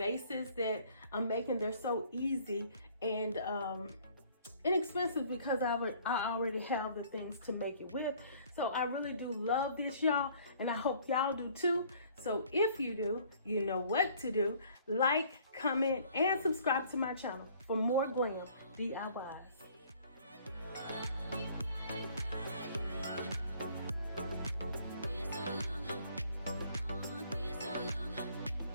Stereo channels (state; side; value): inverted; both; correlation -0.56